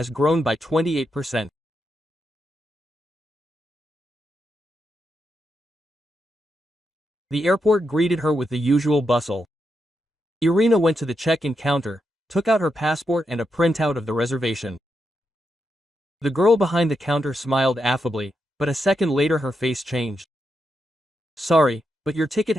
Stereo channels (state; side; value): normal; both; correlation 0.84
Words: grown by 28%. The airport greeted her with the usual bustle. Irina went to the check-in counter, took out her passport and a printout of the reservation. The girl behind the counter smiled affably, but a second later her face changed. "Sorry, but your ticket